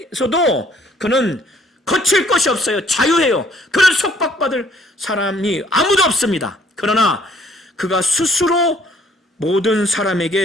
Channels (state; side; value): normal; both; correlation 0.61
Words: 그는 거칠 것이 없어요. 자유해요. 그는 속박받을 사람이 아무도 없습니다. 그러나 그가 스스로 모든